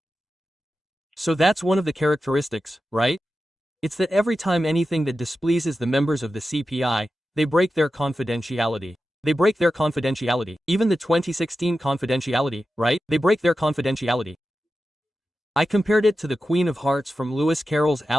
So that's one of the characteristics, right? It's that every time anything that displeases the members of the CPI, they break their confidentiality. They break their confidentiality. Even the 2016 confidentiality, right? They break their confidentiality. I compared it to the Queen of Hearts from Lewis Carroll's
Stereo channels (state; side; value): normal; both; correlation 0.92